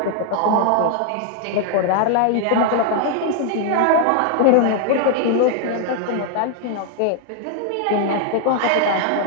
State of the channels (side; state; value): both; different; correlation 0.00